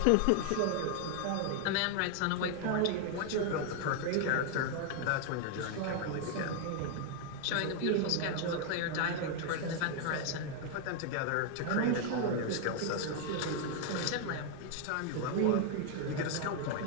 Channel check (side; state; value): both; different; correlation 0.00